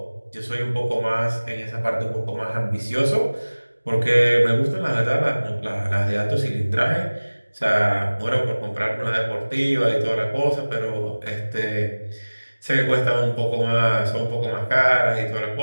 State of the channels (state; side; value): inverted; both; correlation -1.00